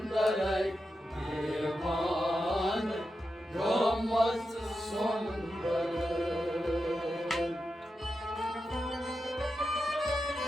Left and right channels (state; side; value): normal; both; correlation 0.89